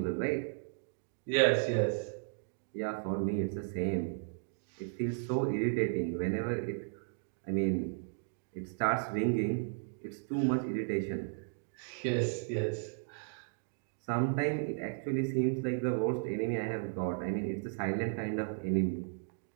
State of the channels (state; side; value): silent; left; digital silence